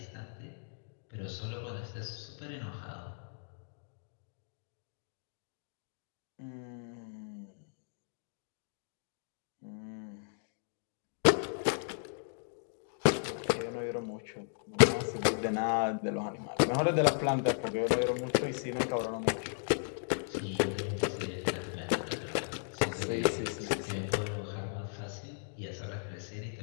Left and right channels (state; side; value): silent; right; digital silence